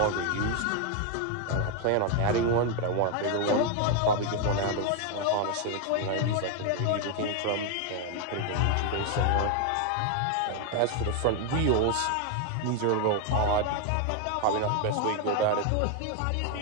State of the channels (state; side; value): different; both; correlation 0.01